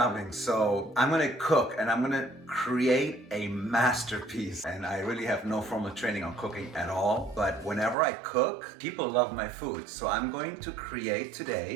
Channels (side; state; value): left; drops out; at 8.0 s